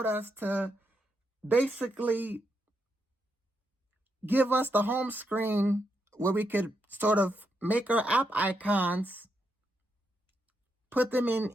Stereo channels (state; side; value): normal; both; correlation 0.81